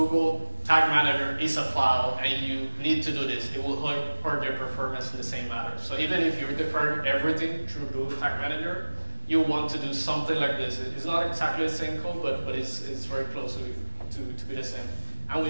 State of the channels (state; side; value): inverted; both; correlation -1.00